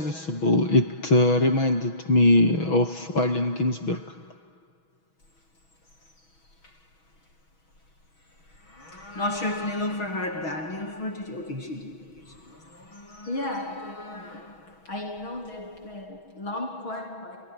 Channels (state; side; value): late; right; 6.2 ms